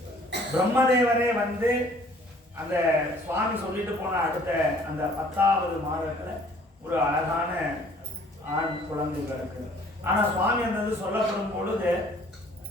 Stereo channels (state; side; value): normal; both; correlation 0.56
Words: பிரம்மதேவரே வந்து அந்த சுவாமி சொல்லிட்டு போன அடுத்த அந்த 10வது மாதத்துல ஒரு அழகான ஆண் குழந்தை பிறக்கு. ஆனா சுவாமி அந்த சொல்லப்படும் பொழுது